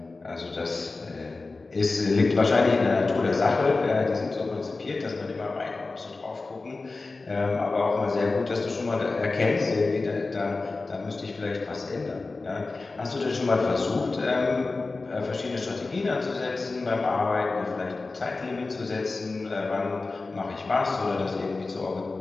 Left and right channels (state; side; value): quieter; right; 3.6 dB